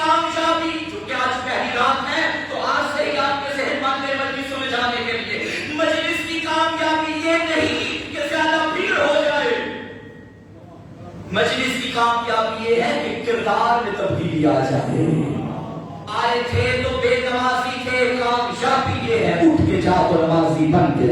چونکہ آج پہلی رات ہے تو آج سے ہی آپ کے ذہن باندھے مجلسوں میں جانے کے لیے. مجلس کی کامیابی یہ نہیں کہ زیادہ بھیڑ ہو جائے، مجلس کی کامیابی یہ ہے کہ کردار میں تبدیلی آ جائے. آئے تھے تو بے نمازی تھے، کامیابی یہ ہے اٹھ کے جا تو نمازی بن کے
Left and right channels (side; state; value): both; identical; correlation 1.00